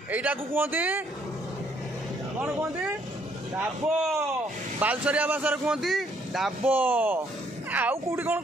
एटा को कहते कौन कहते डाबो, बालसरिया भाषा कहते डाबो। आउ कोठी कौन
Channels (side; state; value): both; normal; correlation 0.67